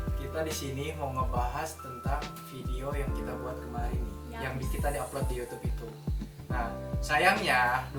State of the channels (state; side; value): identical; both; correlation 1.00